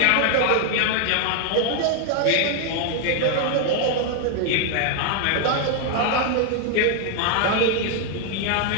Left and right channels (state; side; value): different; both; correlation 0.00